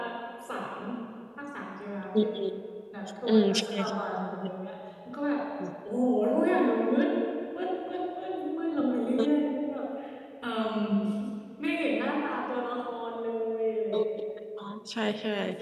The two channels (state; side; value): identical; both; correlation 1.00